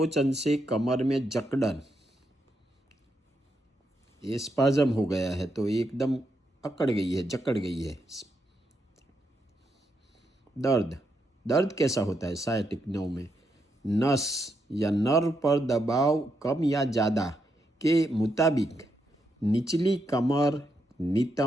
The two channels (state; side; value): normal; both; correlation 0.81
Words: से कमर में जकड़न। ये स्पाज्म हो गया है तो एकदम अकड़ गई है, जकड़ गई है। दर्द, दर्द कैसा होता है सायटिक नर्व में? नस या नर्व पर दबाव कम या ज़्यादा के मुताबिक निचली कमर,